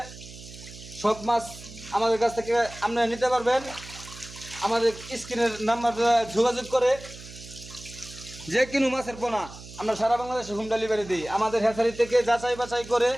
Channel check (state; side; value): noise; right; hum, 16 dB below the sound